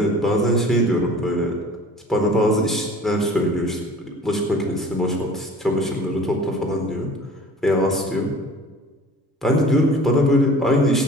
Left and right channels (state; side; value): normal; both; correlation 0.46